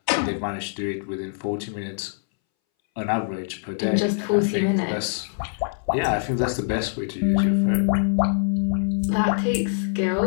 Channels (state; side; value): silent; right; 62 dB below the other